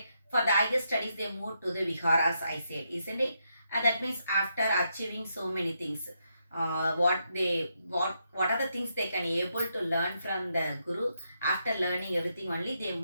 for the higher studies they moved to the viharas, I said, isn't it? And that means after achieving so many things, what are the things they can able to learn from the guru? After learning everything only, they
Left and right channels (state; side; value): inverted; both; correlation -0.80